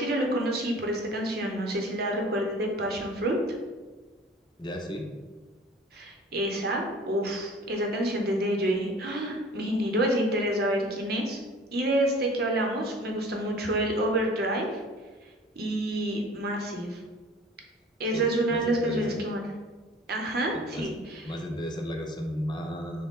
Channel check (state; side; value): normal; both; correlation 0.46